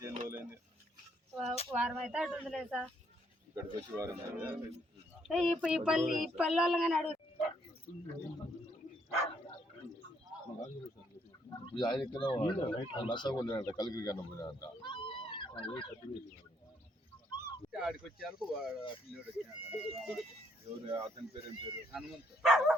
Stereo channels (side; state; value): both; normal; correlation 0.71